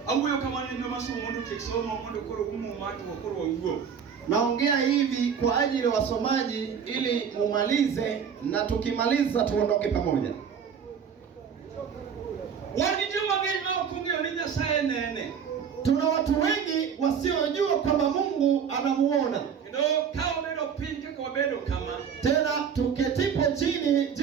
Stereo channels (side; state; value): left; quieter; 7.2 dB